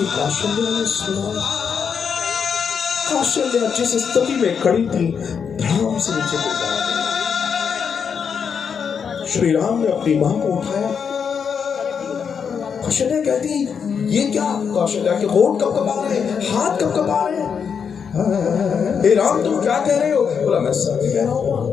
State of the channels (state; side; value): quieter; right; 6.7 dB